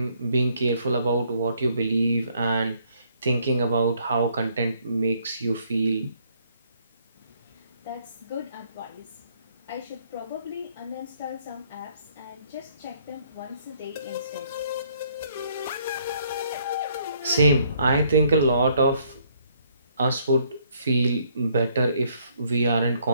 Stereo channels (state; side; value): inverted; both; correlation -0.67